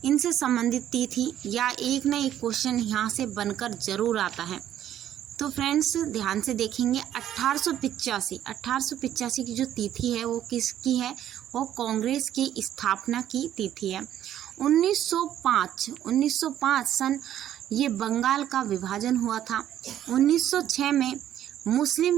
इनसे संबंधित तिथि या एक न एक क्वेश्चन यहाँ से बनकर जरूर आता है। तो फ्रेंड्स, ध्यान से देखेंगे। 1885 की जो तिथि है वो किसकी है? वो कांग्रेस की स्थापना की तिथि है। 1905 सन ये बंगाल का विभाजन हुआ था। 1906 में मुस्लिम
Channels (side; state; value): left; quieter; 11.3 dB